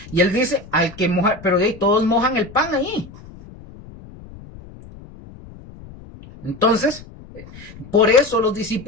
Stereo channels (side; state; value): left; noise; rumble, 19 dB below the sound